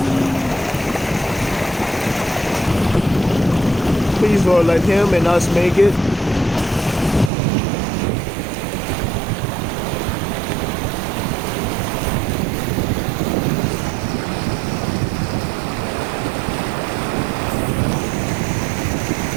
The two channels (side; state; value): left; drops out; at 7.3 s